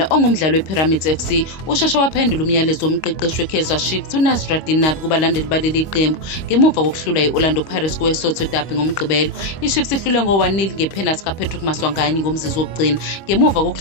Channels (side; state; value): right; late; 25 ms